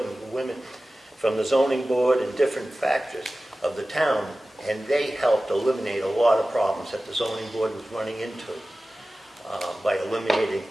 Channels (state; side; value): normal; both; correlation 0.96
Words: women from the zoning board and different factors of the town, and they helped eliminate a lot of problems that the zoning board was running into by eliminating